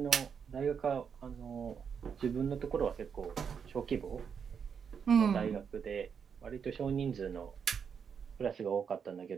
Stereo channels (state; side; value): quieter; left; 6.9 dB